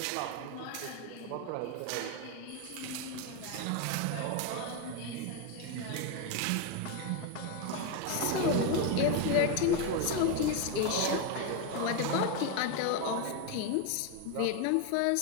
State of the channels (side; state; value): both; different; correlation 0.02